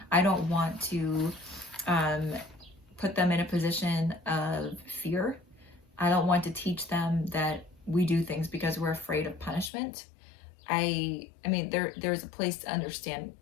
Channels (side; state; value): right; drops out; at 9.7 s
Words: I don't want to put them in a position of fear. I don't want to teach them that we do things because we're afraid of punishment. I mean, there's a place to understand